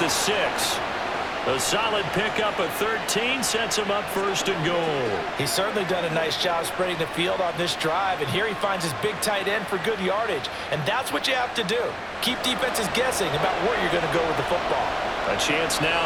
6. A solid pickup of 13 sets him up 1st and goal. He's certainly done a nice job spreading the field on this drive, and here he finds his big tight end for good yardage. And that's what you have to do. Keep defenses guessing about where you're going to go with the football. A chance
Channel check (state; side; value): identical; both; correlation 1.00